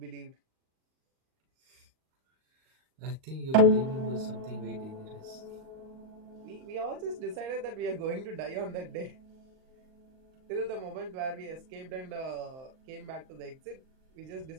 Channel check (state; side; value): late; left; 38 ms